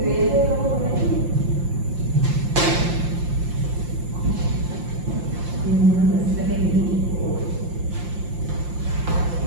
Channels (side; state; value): left; late; 5.7 ms